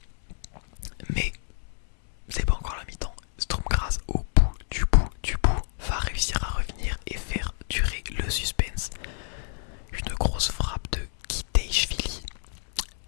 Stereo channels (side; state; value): right; silent; digital silence